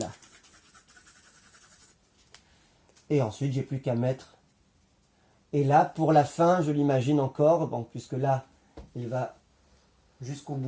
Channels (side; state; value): both; identical; correlation 1.00